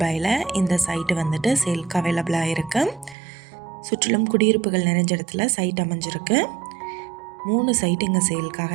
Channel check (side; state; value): left; drops out; at 3.2 s